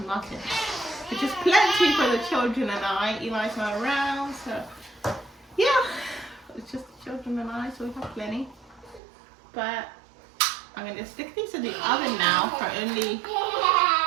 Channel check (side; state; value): left; drops out; at 9.0 s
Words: muffins, which is plenty for the children and I. Eli's not around, so yeah, it's just the children and I, so we have plenty. But I'm going to stick these in the oven now for only